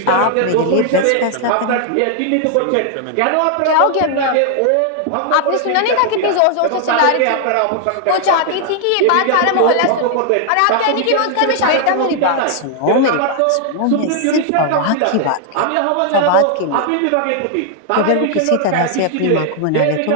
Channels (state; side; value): different; both; correlation 0.00